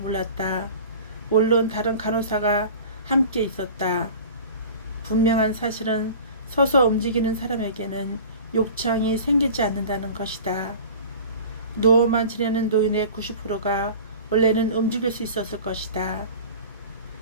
물론 다른 간호사가 함께 있었다. 분명한 사실은 서서 움직이는 사람에게는 욕창이 생기지 않는다는 것이다. 누워만 지내는 노인의 90%가 원래는 움직일 수 있었을 것이다.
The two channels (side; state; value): both; inverted; correlation -0.40